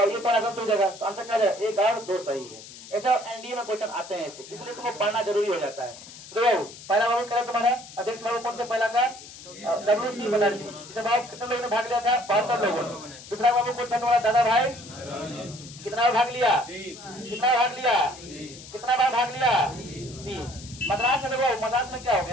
ये पर अगर हो जाएगा तो आंसर क्या है, 1 और 2 सही है। ऐसा एनडीए में क्वेश्चन आते हैं ऐसे, इसलिए तुमको पढ़ना जरूरी हो जाता है। तो बाबू पहला बाबू क्या तुम्हारा अध्यक्ष बाबू कौन थे, पहला का WC बनर्जी। इसे बाबू कितने लोगों ने भाग लिया था, 72 लोगों ने। दूसरा बाबू कौन था तुम्हारा, दादा भाई, कितना बार भाग लिया, कितना बार भाग लिया, 3। मद्रास में देखो, मद्रास में क्या हो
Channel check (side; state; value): left; noise; hiss, 16 dB below the sound